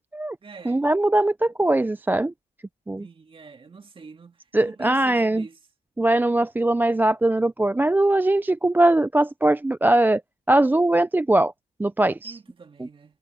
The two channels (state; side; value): normal; both; correlation 0.93